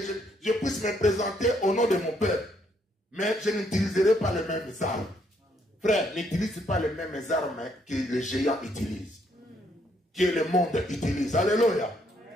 je puisse me présenter au nom de mon peuple. Mais je n'utiliserai pas les mêmes armes. Frère, n'utilise pas les mêmes armes que les géants utilisent. Que le monde utilise. Alléluia.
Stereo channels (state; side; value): normal; both; correlation 0.71